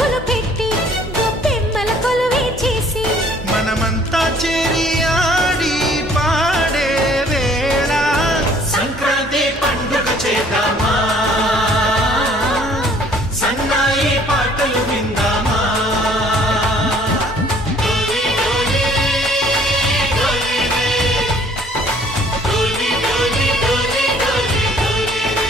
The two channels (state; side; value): normal; both; correlation 0.57